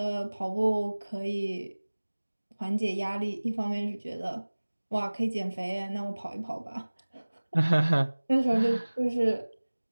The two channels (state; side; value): inverted; both; correlation -1.00